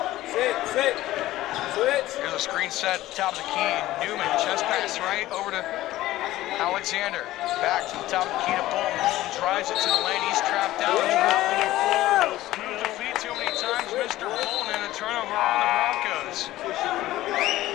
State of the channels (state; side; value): quieter; right; 15.8 dB